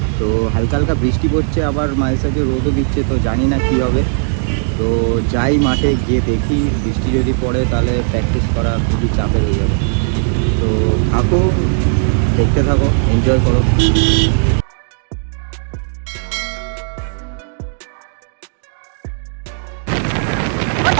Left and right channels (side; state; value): left; silent; digital silence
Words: তো হালকা হালকা বৃষ্টি পড়ছে, আবার মাঝে সাঝে রোদও দিচ্ছে, তো জানি না কী হবে। তো যাই মাঠে গিয়ে দেখি, বৃষ্টি যদি পড়ে তাহলে প্র্যাকটিস করা খুবই চাপের হয়ে যাবে। তো থাকো, দেখতে থাকো, এনজয় করো।